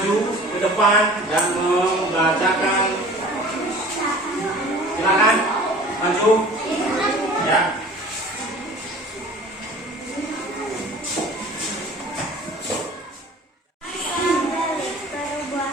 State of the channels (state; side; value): normal; both; correlation 0.45